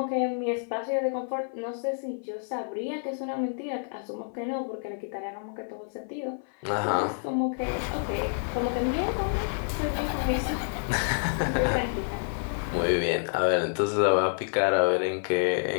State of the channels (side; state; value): right; silent; 59 dB below the other